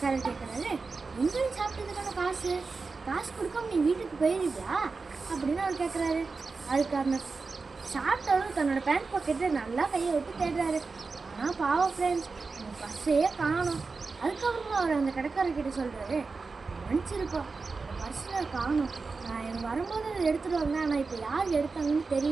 கேட்குறாரு, எங்கேயும் சாப்பிட்டதுக்கான காசு கொடுக்காம நீ வீட்டுக்கு போயிருவியா அப்படின்னு அவர் கேட்குறாரு. அதுக்கு அந்த சாப்பிட்டவரும் தன்னோட பேண்ட் பாக்கெட்டில் நல்லா கையை விட்டு தேடுறாரு. ஆனால் பாவம் ஃப்ரெண்ட்ஸ், அந்த பர்ஸையே காணும். அதுக்கப்புறமா அவர் அந்த கடைக்காரர்கிட்ட சொல்கிறாரு, மன்னிச்சிருப்போம், அந்த பர்ஸில் காணும். நான் எனக்கு வரும்போது அதை எடுத்துகிட்டு வந்தேன், ஆனால் இப்போ யார் எடுத்தாங்கன்னு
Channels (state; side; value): quieter; left; 4.3 dB